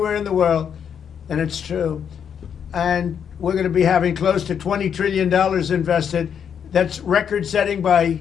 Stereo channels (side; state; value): right; quieter; 7.9 dB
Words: in the world, and it's true. And we're going to be having close to $20 trillion invested. That's record-setting by